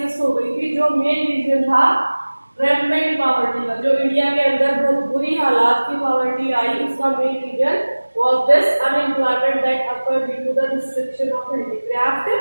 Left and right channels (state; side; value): inverted; both; correlation -1.00